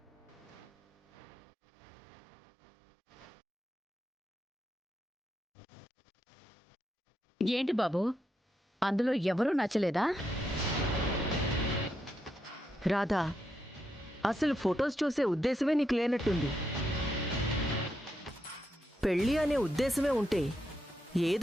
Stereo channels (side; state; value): both; normal; correlation 0.83